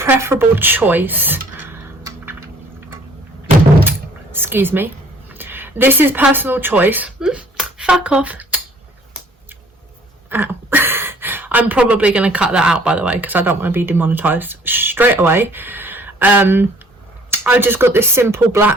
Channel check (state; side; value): normal; both; correlation 0.57